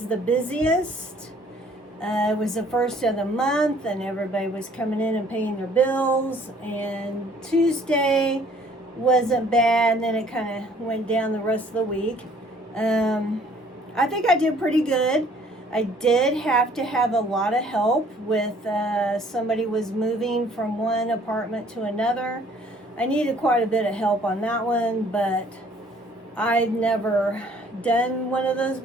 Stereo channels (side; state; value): both; normal; correlation 0.58